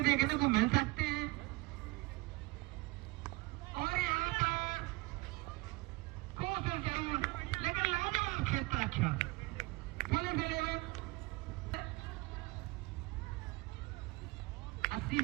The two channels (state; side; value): quieter; left; 22.8 dB